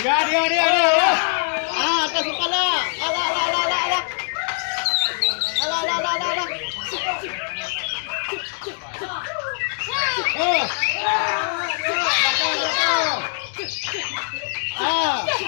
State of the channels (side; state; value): right; silent; digital silence